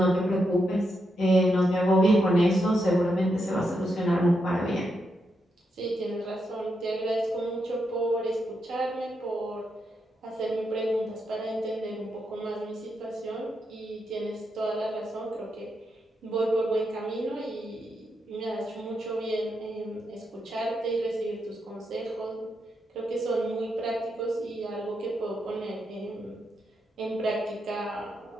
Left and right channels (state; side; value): normal; both; correlation 0.83